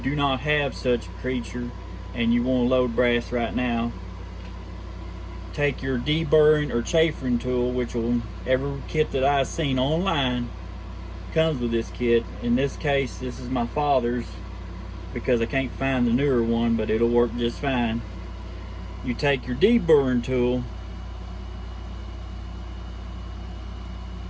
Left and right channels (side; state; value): both; identical; correlation 1.00